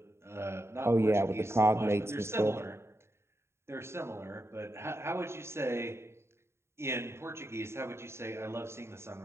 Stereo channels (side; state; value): left; late; 0.13 ms